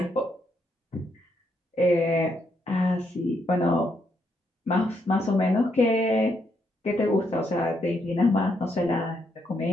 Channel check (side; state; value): both; normal; correlation 0.77